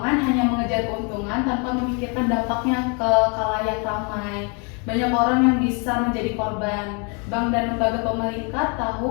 hanya mengejar keuntungan tanpa memikirkan dampaknya ke khalayak ramai. Banyak orang yang bisa menjadi korban. Bank dan lembaga pemerintah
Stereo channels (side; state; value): right; quieter; 34.8 dB